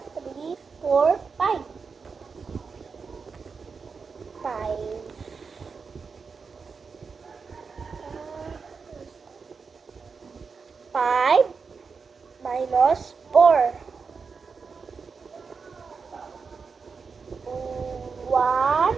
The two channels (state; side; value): quieter; left; 5.2 dB